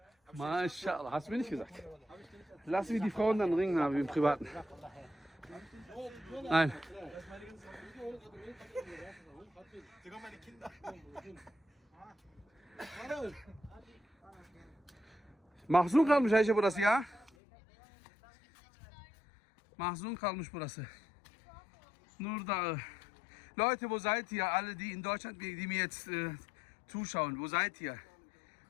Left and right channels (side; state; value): right; drops out; at 17.3 s